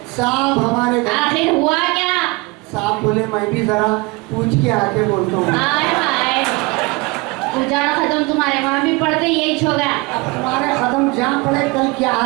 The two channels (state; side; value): quieter; left; 25.5 dB